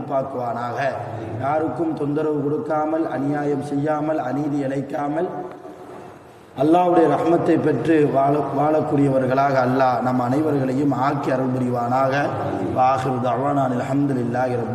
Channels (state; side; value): identical; both; correlation 1.00